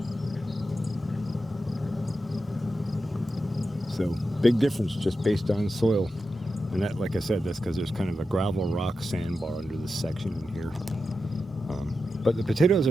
So big difference just based on soil. And that, like I said, that's because there's kind of a gravel rock sandbar under this section in here. But the potatoes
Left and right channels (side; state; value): both; normal; correlation 0.90